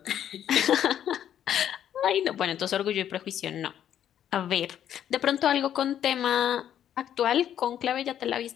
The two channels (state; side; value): quieter; right; 10.2 dB